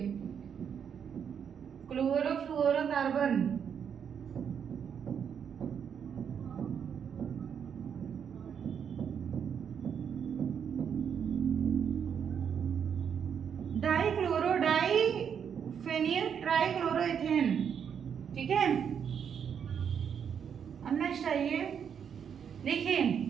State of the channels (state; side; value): quieter; left; 7.7 dB